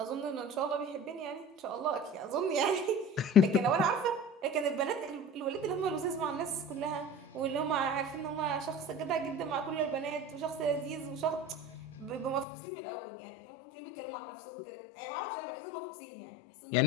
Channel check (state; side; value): drops out; right; at 12.5 s